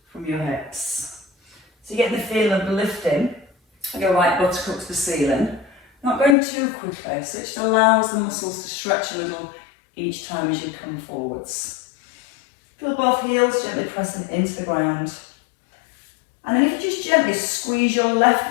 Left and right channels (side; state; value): right; drops out; at 6.4 s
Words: from your hips. So you get the feel of lifting. Your right buttock up to the ceiling. Not going too quickly, so it just allows the muscles to stretch a little each time as you come forwards. Feel both heels gently pressing into the ground. And then if you just gently squeeze your